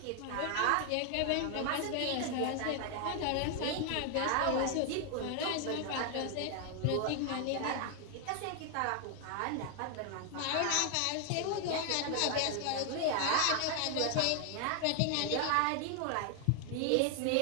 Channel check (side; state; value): both; different; correlation 0.00